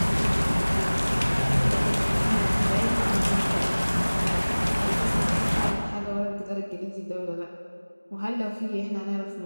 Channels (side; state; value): both; inverted; correlation -1.00